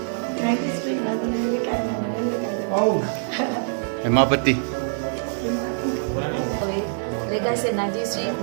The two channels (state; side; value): silent; left; 56 dB below the other